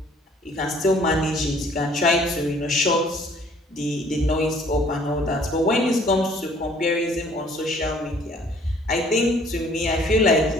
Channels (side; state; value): both; normal; correlation 0.58